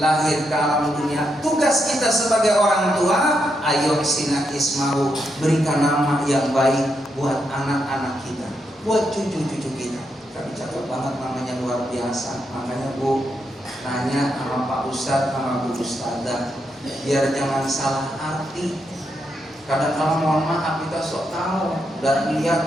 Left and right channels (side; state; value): both; normal; correlation 0.81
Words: ke alam dunia, tugas kita sebagai orang tua, ayo sina ismahu, berikan nama yang baik buat anak-anak kita, buat cucu-cucu kita. Kami cakap banget namanya luar biasa. Makanya Bu nanya sama Pak Ustadz sama Bu Ustadzah, biar jangan salah arti. Kadang-kadang mohon maaf kita sok tahu dan lihat